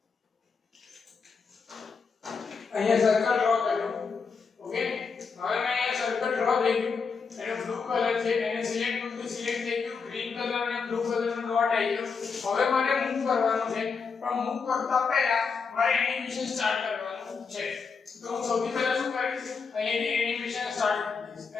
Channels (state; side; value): quieter; right; 5.3 dB